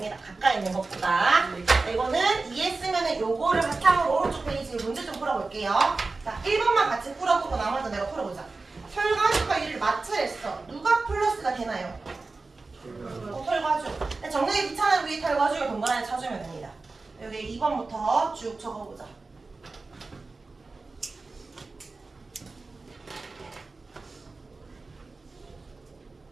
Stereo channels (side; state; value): left; quieter; 3.7 dB